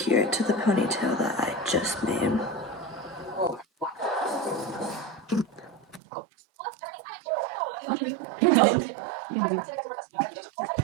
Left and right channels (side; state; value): left; drops out; at 6.0 s